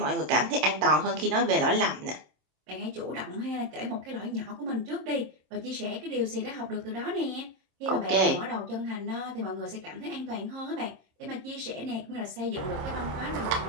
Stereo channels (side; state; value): left; late; 27 ms